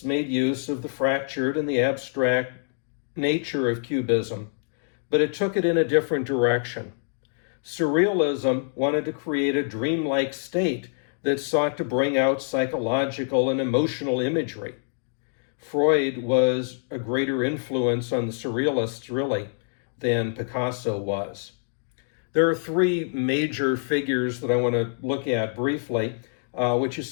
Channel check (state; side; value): silent; right; digital silence